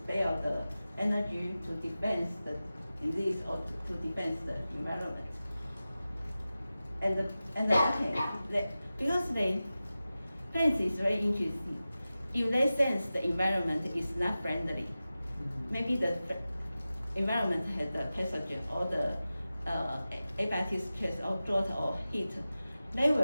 the energy to defend the disease or to defend the environment. And okay, because plants is very interesting. If they sense the environment is not friendly, maybe the environment has the pathogen or the abiotic stress or drought or heat, they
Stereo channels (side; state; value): both; inverted; correlation -0.95